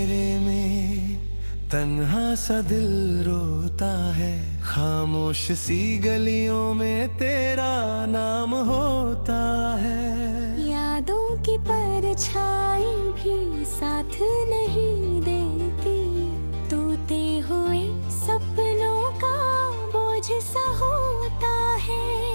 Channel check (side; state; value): both; inverted; correlation -1.00